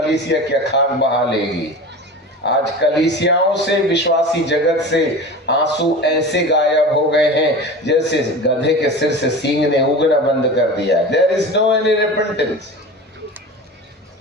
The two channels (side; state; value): both; normal; correlation 0.32